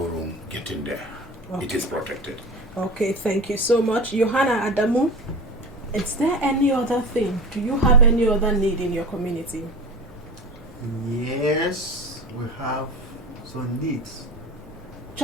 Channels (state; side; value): normal; both; correlation 0.32